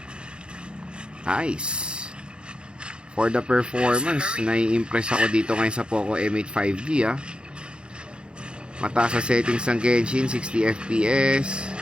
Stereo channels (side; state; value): left; late; 0.053 ms